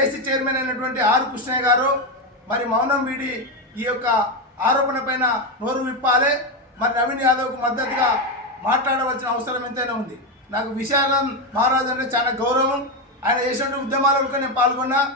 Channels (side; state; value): both; normal; correlation 0.09